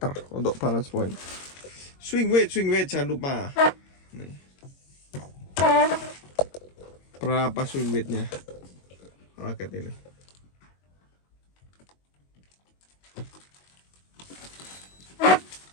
untuk balance point. Swing weight jangan lupa. Nih. Berapa swing weightnya raket ini?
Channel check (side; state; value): right; late; 22 ms